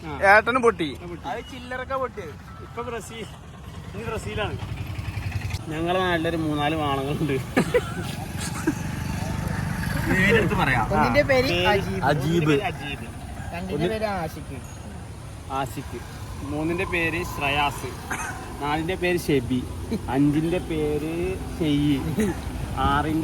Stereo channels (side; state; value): both; identical; correlation 1.00